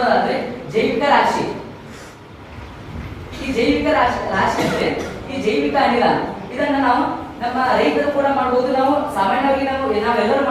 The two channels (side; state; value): both; identical; correlation 1.00